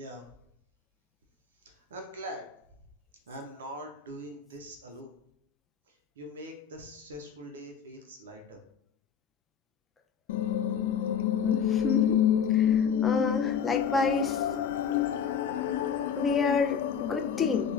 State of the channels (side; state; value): right; quieter; 7.3 dB